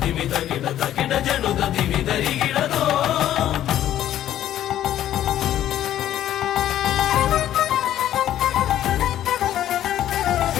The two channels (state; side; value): quieter; right; 12.0 dB